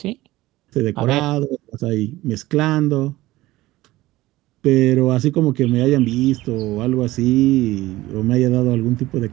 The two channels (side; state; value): left; quieter; 17.7 dB